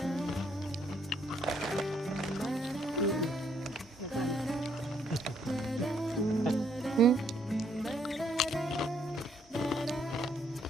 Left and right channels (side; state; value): both; normal; correlation 0.70